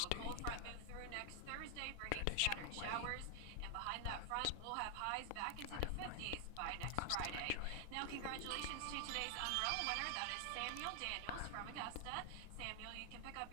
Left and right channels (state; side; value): different; both; correlation 0.00